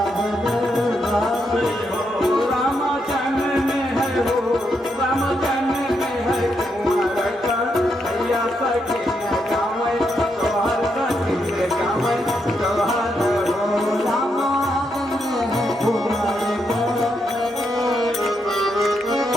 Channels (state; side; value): normal; both; correlation 0.80